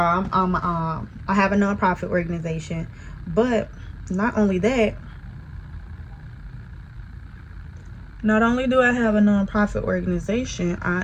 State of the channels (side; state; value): both; identical; correlation 1.00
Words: I have a nonprofit organization, but not only that, not only do I have a nonprofit organization, I